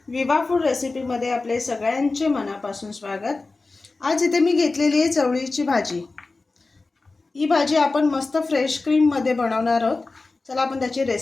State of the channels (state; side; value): quieter; right; 3.6 dB